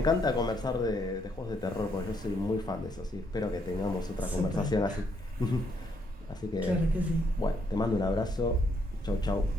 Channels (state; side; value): normal; both; correlation 0.73